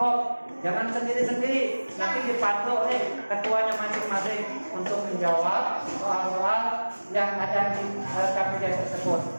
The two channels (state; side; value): inverted; both; correlation -1.00